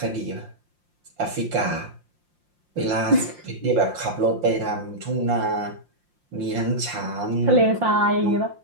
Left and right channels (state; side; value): late; left; 5.7 ms